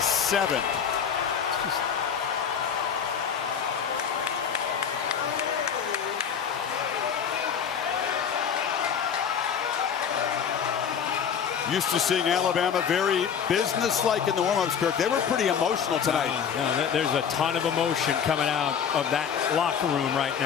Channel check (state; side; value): quieter; right; 7.6 dB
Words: Used to seeing Alabama very businesslike in the warm-ups, Kirk. They were pretty emotional tonight. There's a ton of emotion coming out of that locker room right